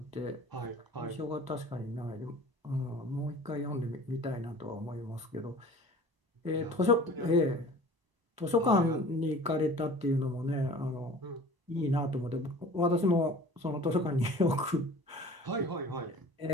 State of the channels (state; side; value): late; left; 1.0 ms